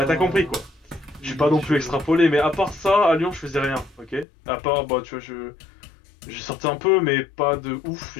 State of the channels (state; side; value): drops out; right; at 4.2 s